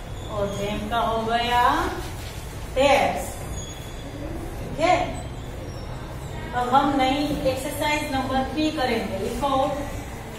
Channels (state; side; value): identical; both; correlation 1.00